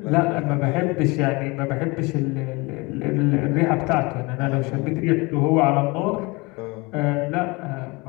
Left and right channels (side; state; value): right; quieter; 25.8 dB